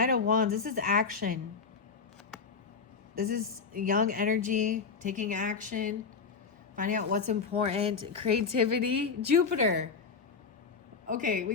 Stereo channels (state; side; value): quieter; right; 5.3 dB